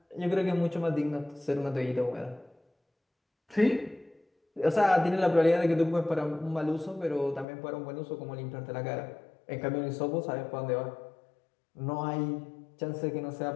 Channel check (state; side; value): drops out; right; at 7.5 s